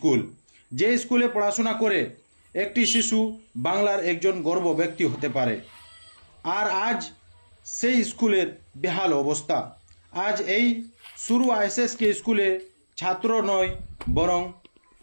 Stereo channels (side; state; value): both; inverted; correlation -1.00